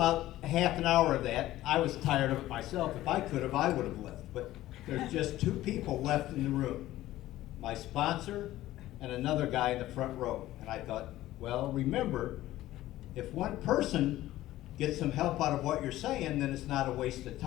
half an hour of that, I was tired of it myself. If I could have, I would have left. But there's just two people left in the room, my sponsor and another guy in the front row. And I thought, well, remember, if one person gets some help out of what you're saying, then it's not a waste of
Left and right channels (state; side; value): quieter; right; 15.3 dB